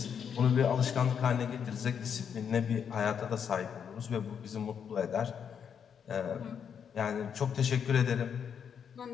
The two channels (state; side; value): quieter; right; 7.6 dB